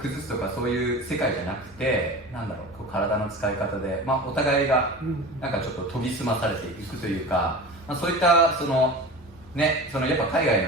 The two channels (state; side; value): normal; both; correlation 0.33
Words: すとかそういう世界じゃなくて、こう体の使い方で、まあ、お互いがなんかちょっと研ぎ澄まされていくというか、まあ、そういったやっぱ海外